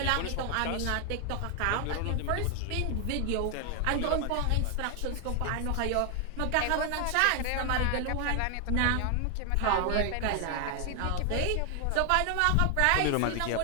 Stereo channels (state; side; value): different; both; correlation 0.00